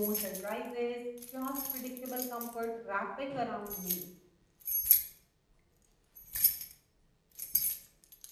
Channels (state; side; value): identical; both; correlation 1.00